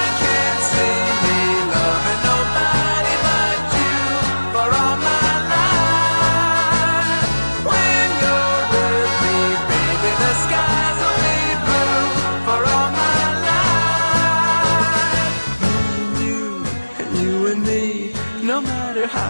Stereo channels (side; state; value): both; inverted; correlation -1.00